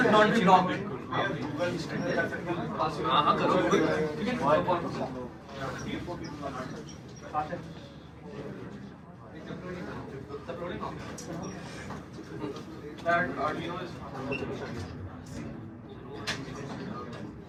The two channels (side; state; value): both; identical; correlation 1.00